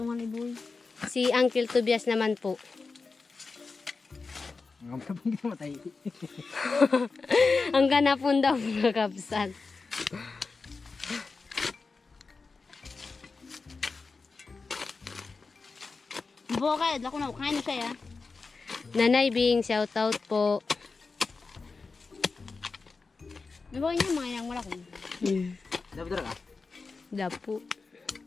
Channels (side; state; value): right; quieter; 4.3 dB